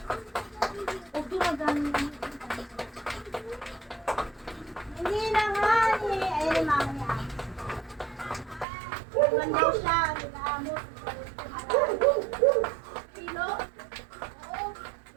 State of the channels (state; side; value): drops out; left; at 8.7 s